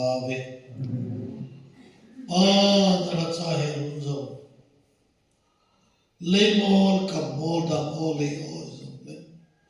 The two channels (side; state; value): both; identical; correlation 1.00